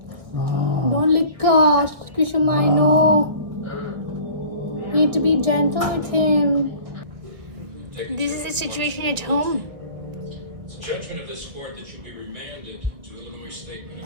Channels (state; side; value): late; left; 1.6 ms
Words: Don't lick Kushuma, I know. You need to be gentle with him. This is the situation at home. It's a judgment of this court that you be remanded to Illinois State